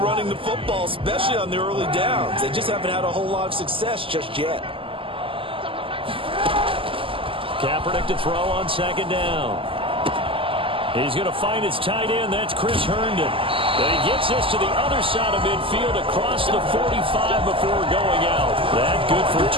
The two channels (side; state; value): left; late; 0.26 ms